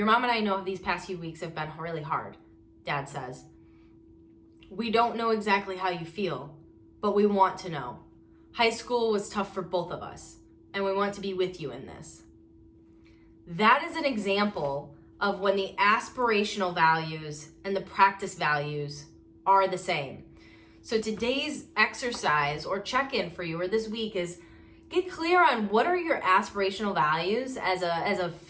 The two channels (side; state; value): both; identical; correlation 1.00